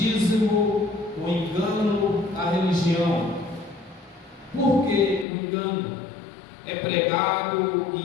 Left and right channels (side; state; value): right; drops out; at 5.2 s